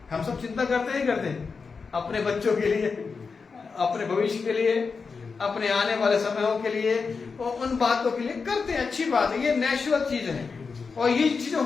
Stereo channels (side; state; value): right; quieter; 5.0 dB